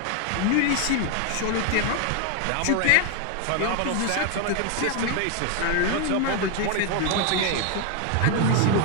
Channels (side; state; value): both; different; correlation 0.01